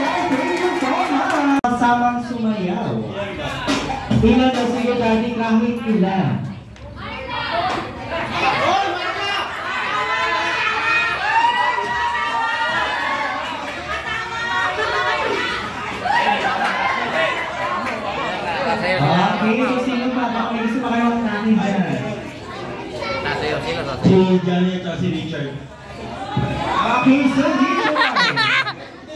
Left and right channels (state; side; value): identical; both; correlation 1.00